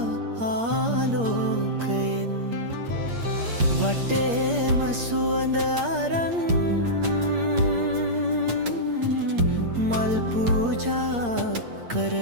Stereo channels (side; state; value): left; late; 8.6 ms